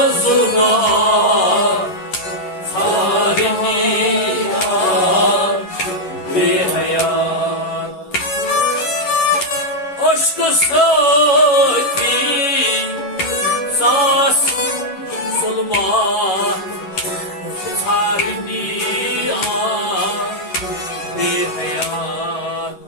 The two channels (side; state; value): right; late; 11 ms